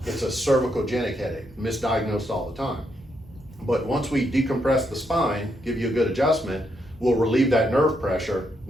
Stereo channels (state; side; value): normal; both; correlation 0.78